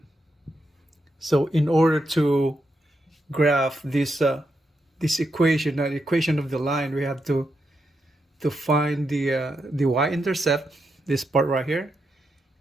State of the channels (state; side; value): normal; both; correlation 0.84